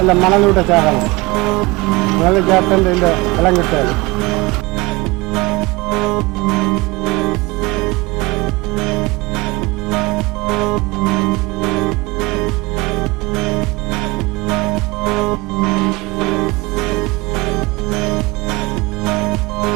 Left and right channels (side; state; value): left; quieter; 23.0 dB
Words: മണലൂടെ ചേർക്കണം. മണൽ ചേർത്തൻ്റെ ഇതിൻ്റെ വെള്ളം കിട്ടുകയാണ്.